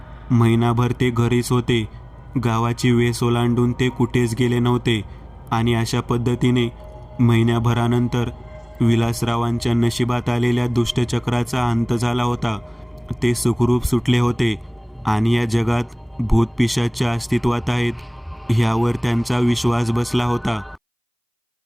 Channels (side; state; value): both; identical; correlation 1.00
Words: महिनाभर ते घरीच होते. गावाची वेस ओलांडून ते कुठेच गेले नव्हते आणि अशा पद्धतीने महिन्याभरानंतर विलासरावांच्या नशिबात आलेल्या दुष्टचक्राचा अंत झाला होता. ते सुखरूप सुटले होते आणि या जगात भूतपिशाच्या अस्तित्वात आहेत ह्यावर त्यांचा विश्वास बसला होता.